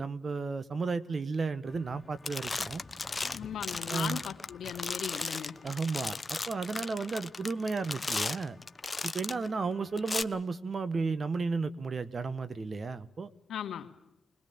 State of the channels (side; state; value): both; normal; correlation 0.88